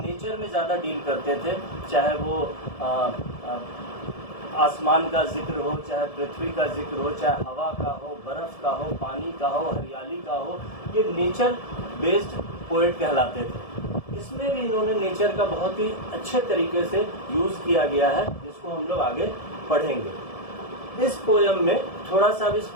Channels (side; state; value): right; late; 1.7 ms